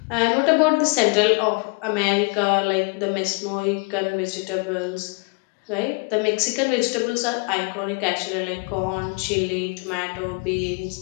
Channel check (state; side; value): quieter; right; 32.7 dB